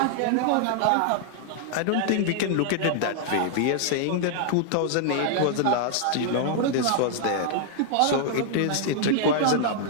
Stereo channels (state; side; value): different; both; correlation -0.01